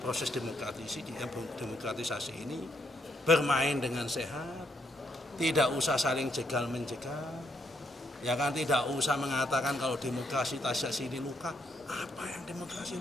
proses demokratisasi ini. Bermain dengan sehat, tidak usah saling jegal-menjegal, ya kan, tidak usah mengatakan kalau demokrasi tasya sini luka. Apa yang demokrasi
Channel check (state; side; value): normal; both; correlation 0.75